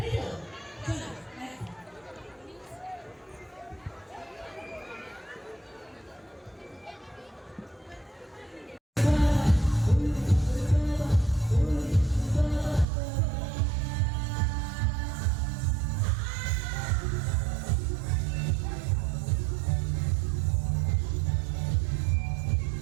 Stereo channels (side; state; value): left; drops out; at 12.9 s